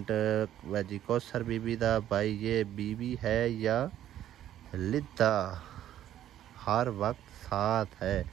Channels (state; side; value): quieter; left; 11.8 dB